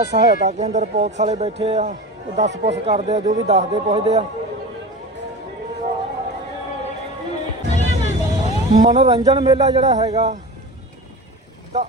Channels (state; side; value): normal; both; correlation 0.31